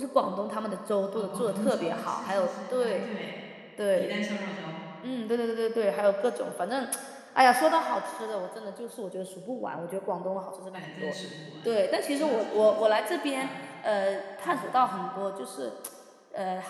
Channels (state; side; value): identical; both; correlation 1.00